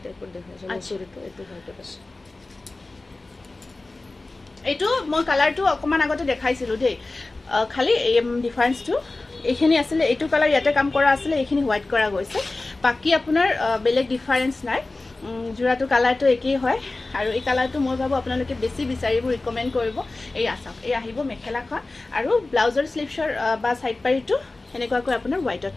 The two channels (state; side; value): quieter; right; 3.2 dB